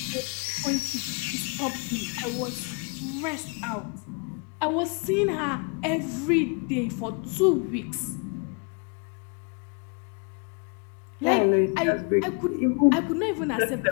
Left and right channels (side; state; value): right; quieter; 32.4 dB